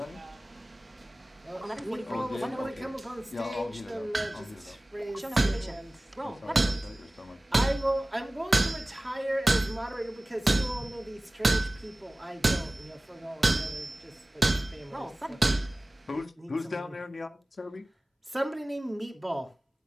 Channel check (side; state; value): both; normal; correlation 0.98